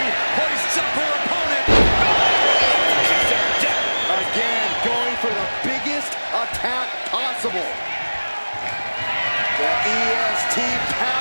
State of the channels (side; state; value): both; inverted; correlation -1.00